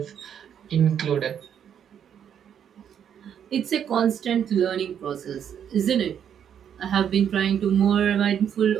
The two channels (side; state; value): left; quieter; 8.8 dB